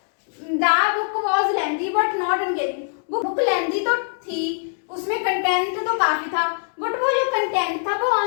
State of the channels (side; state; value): right; silent; digital silence